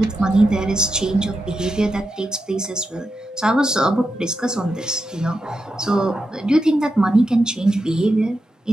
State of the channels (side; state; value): both; normal; correlation 0.88